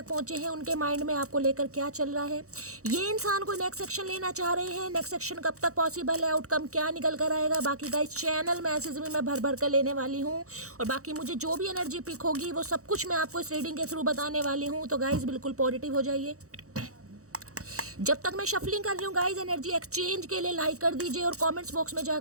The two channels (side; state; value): left; late; 0.65 ms